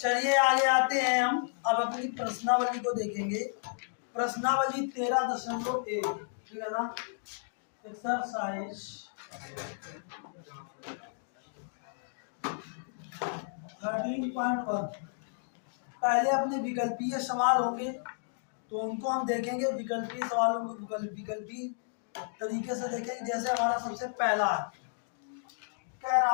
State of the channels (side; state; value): right; silent; digital silence